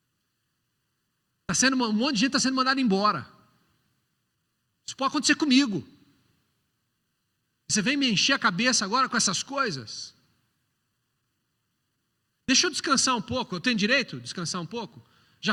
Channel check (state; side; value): identical; both; correlation 1.00